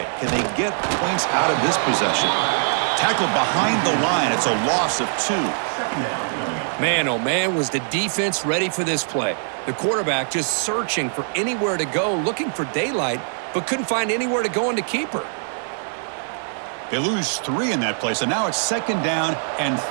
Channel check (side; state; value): left; silent; digital silence